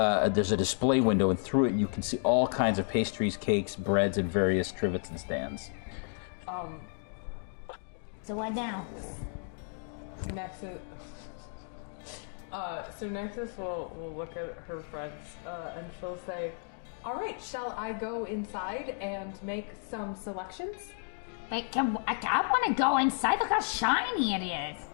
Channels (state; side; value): silent; right; 56 dB below the other